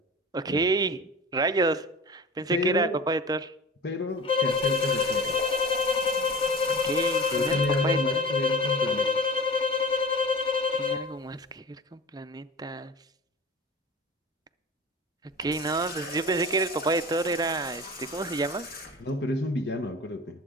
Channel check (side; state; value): both; normal; correlation 0.37